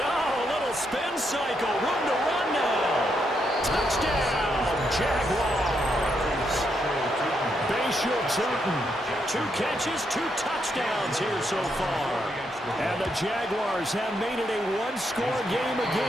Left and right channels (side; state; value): both; normal; correlation 0.79